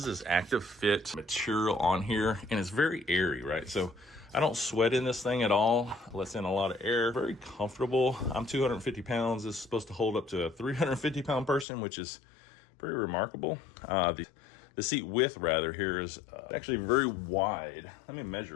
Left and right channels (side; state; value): right; drops out; at 11.7 s